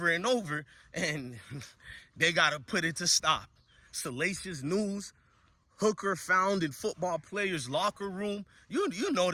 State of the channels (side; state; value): both; identical; correlation 1.00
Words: and over, and they got to put it to stop. Salacious news, hooker found in football players' locker room. You know